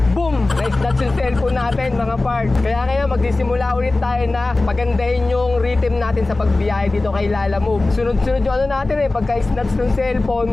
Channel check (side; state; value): right; quieter; 3.1 dB